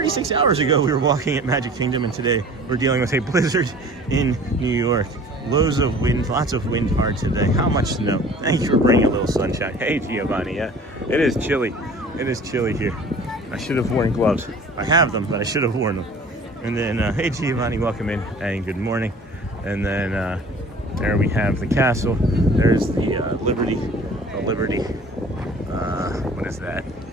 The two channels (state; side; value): normal; both; correlation 0.47